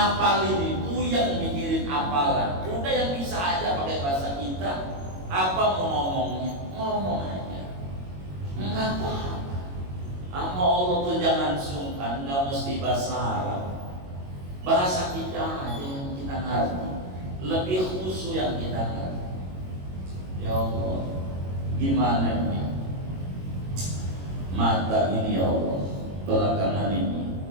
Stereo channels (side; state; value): left; late; 22 ms